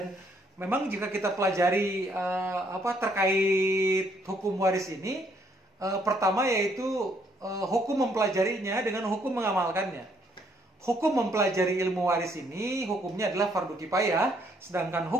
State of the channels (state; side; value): normal; both; correlation 0.69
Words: memang jika kita pelajari terkait hukum waris ini, pertama yaitu hukum mempelajarinya dengan hukum mengamalkannya. Hukum mempelajari ilmu waris ini hukumnya adalah fardu kifayah, sedangkan